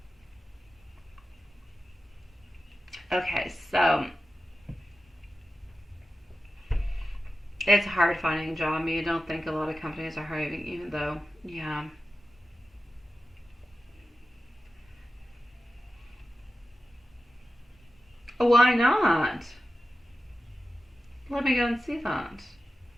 Okay, so it's hard finding a job. I mean, I don't think a lot of companies are hiring, even though, yeah. Why not? Let me go and see that.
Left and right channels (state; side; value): normal; both; correlation 0.93